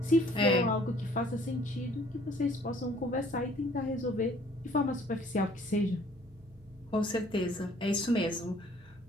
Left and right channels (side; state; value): both; normal; correlation 0.57